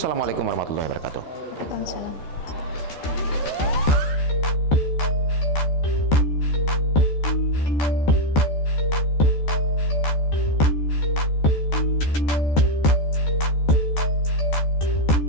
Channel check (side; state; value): right; late; 14 ms